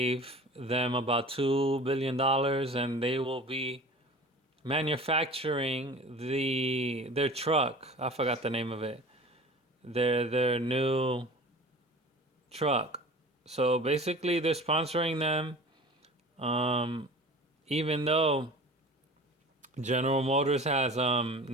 them about $2 billion, and they will be manufacturing their truck. I forgot the name of it. Their new truck. So basically, they're sponsoring them. Even though General Motors has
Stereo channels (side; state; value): both; normal; correlation 0.40